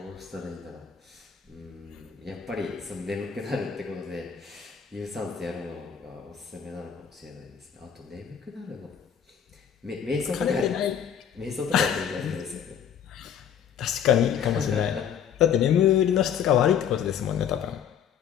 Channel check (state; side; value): quieter; right; 8.4 dB